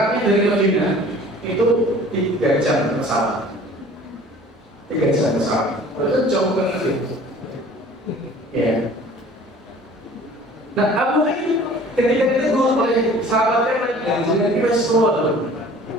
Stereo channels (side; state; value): both; normal; correlation 0.48